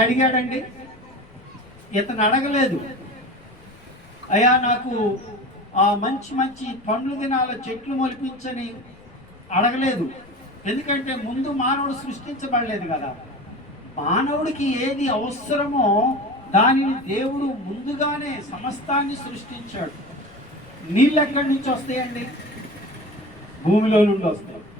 అడిగాడండి, ఇతను అడగలేదు, అయ్యా నాకు ఆ మంచి మంచి పండ్లు దినాల చెట్లు మొలిపించని అడగలేదు. ఎందుకంటే ముందు మానవుడు సృష్టించబడలేదు కదా. మానవుడికి ఏది అవసరమో దానిని దేవుడు ముందుగానే సమస్తాన్ని సృష్టించాడు. నీళ్ళు ఎక్కడి నుంచి వస్తాయండి? భూమిలో నుండి వస్తాయి.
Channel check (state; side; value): noise; left; rumble, 26 dB below the sound